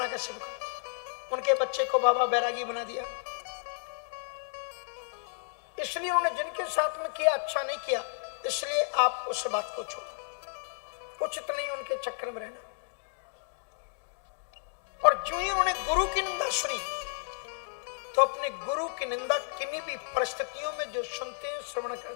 का उनके बच्चे को बाबा बैरागी बना दिया। इसलिए उन्होंने जिनके साथ में किया अच्छा नहीं किया, इसलिए आप उस बात को छोड़ो, उचित नहीं उनके चक्कर में रहना। और जो ही उन्होंने गुरु की निंदा सुनी तो अपने गुरु की निंदा किन्हीं भी परिस्थितियों में जो सुनते हैं, श्रवण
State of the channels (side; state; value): right; silent; digital silence